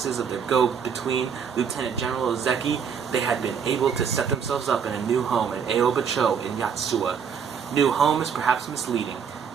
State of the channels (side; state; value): left; quieter; 6.9 dB